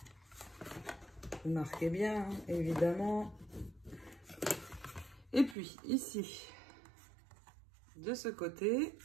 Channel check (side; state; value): left; drops out; at 5.6 s